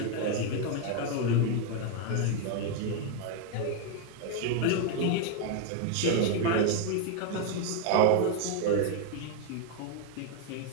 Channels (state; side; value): different; both; correlation 0.01